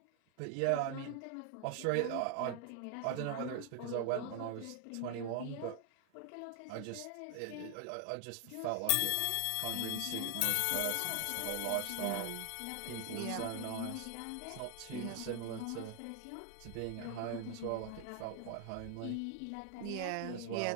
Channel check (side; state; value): both; different; correlation 0.00